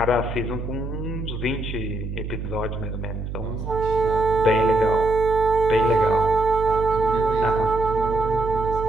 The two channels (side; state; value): right; noise; hum, 6 dB below the sound